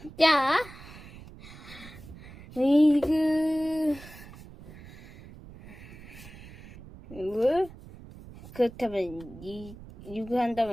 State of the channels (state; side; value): noise; right; rumble, 17 dB below the sound